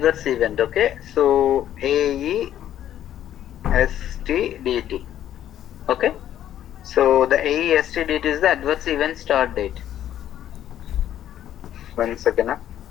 event. Okay, so AESTDT. Okay, so the AESTDT is the adverse event start date. 1 second.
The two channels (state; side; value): quieter; right; 11.4 dB